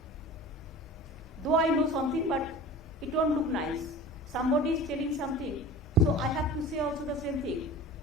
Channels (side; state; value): both; normal; correlation 0.38